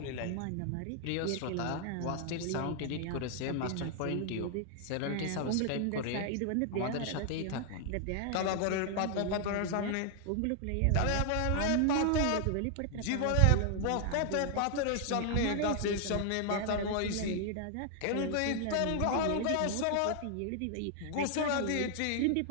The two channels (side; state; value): both; different; correlation 0.00